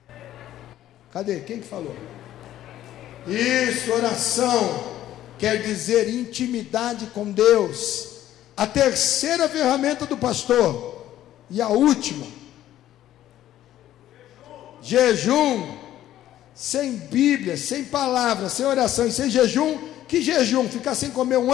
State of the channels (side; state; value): right; quieter; 12.9 dB